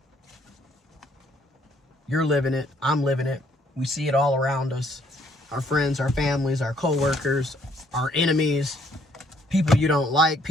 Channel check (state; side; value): normal; both; correlation 0.66